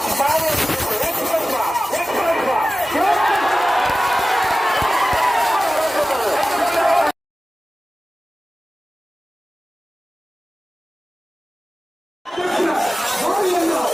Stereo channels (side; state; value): both; normal; correlation 0.96